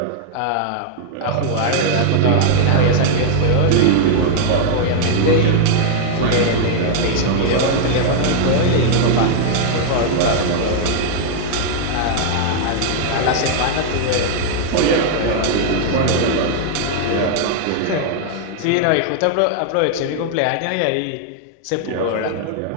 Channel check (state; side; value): different; both; correlation -0.01